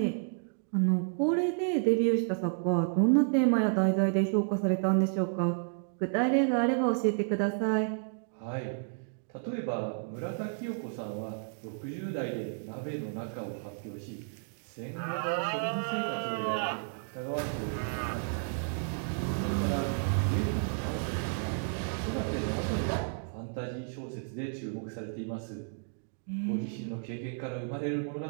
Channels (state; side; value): silent; left; digital silence